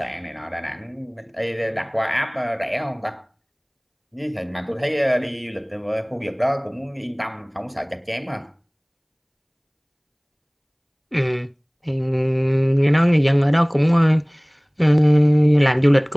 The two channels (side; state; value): both; identical; correlation 1.00